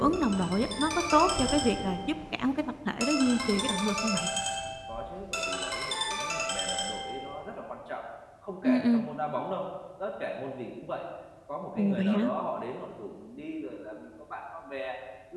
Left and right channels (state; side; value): identical; both; correlation 1.00